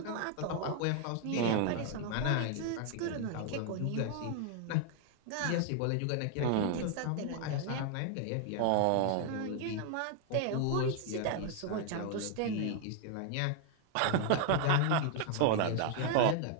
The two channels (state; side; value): different; both; correlation 0.00